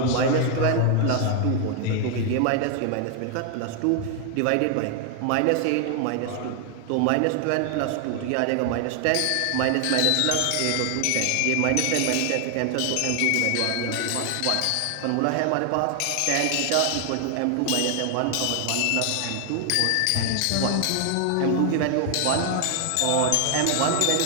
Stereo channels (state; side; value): different; both; correlation 0.00